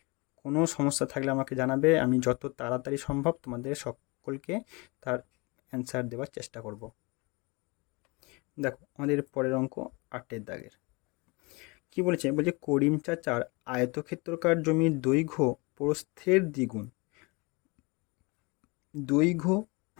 কোনো সমস্যা থাকলে আমাকে জানাবে, আমি যত তাড়াতাড়ি সম্ভব তোমাদের সকলকে তার অ্যান্সার দেওয়ার চেষ্টা করব। দেখো আমাদের পরের অঙ্ক 8 দাগের কি বলেছে? বলছে করিম চাচার আয়তক্ষেত্রাকার জমির দৈর্ঘ্য প্রস্থের দ্বিগুণ। দৈর্ঘ্য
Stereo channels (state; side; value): quieter; right; 27.3 dB